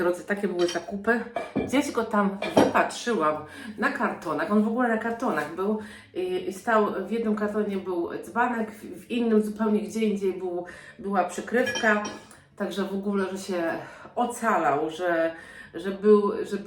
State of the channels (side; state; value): both; identical; correlation 1.00